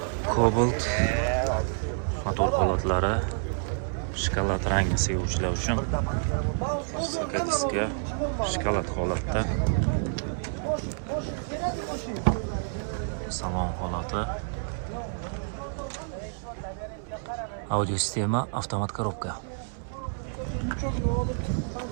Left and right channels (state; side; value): silent; left; 59 dB below the other